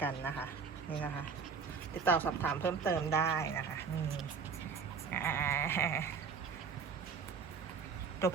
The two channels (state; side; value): quieter; left; 5.6 dB